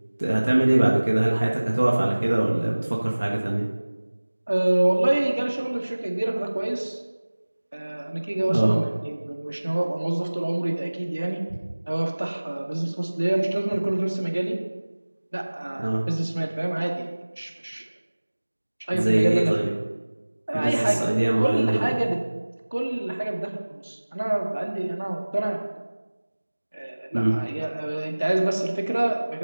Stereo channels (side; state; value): both; inverted; correlation -1.00